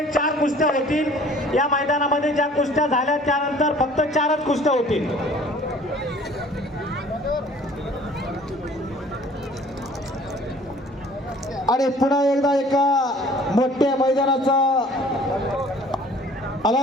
4 कुस्त्या होतील. या मैदानामध्ये ज्या कुस्त्या झाल्या त्यानंतर फक्त 4च कुस्त्या होतील. आणि पुन्हा एकदा एका मोठ्या मैदानाचा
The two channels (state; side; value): normal; both; correlation 0.52